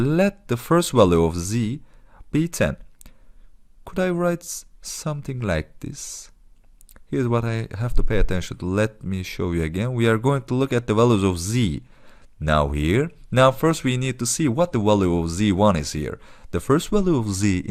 the first value of z be 10. Could I write something like this? Here's what I have to pay attention to. Let me show you again. We are going to look at the values of z now here. Now first we need to see what the value of z1 is here. The first value of z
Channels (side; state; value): both; identical; correlation 1.00